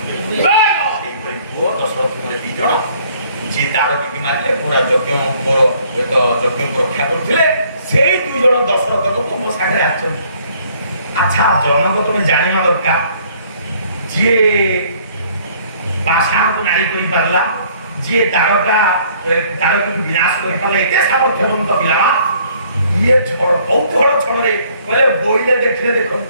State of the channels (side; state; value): both; inverted; correlation -0.60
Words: ପୁଅ ଦଶରଥଙ୍କର ଦି ଜଣ ଯିଏ ତାର ବିକି ମାରିଲେ ପୁରା ଯଜ୍ଞଙ୍କର ଏକ ଯଜ୍ଞକୁ ରକ୍ଷା କରୁଥିଲେ ସେଇ ଦୁଇ ଜଣ ଦଶରଥଙ୍କୁ ତୁମ ସାଙ୍ଗରେ ଆସିଛନ୍ତି ଆଚ୍ଛା ଜନକ ତୁମେ ଜାଣିବା ଦରକାର ଯିଏ ପାଷାଣକୁ ନାରୀ କରିପାରିଲା ଯିଏ ତାରକୁ ବିନାଶ କରିପାରିଲା ଏତେ ସାମର୍ଥ୍ୟବନ୍ତ ପିଲା ଇଏ କୌତୂହଳ ଛଳରେ କହିଲେ ବୋଇଲେ ଦେଖିଲେ